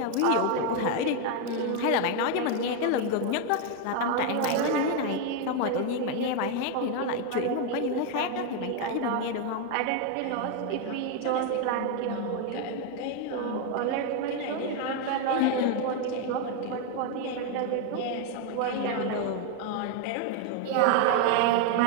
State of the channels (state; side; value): different; both; correlation 0.01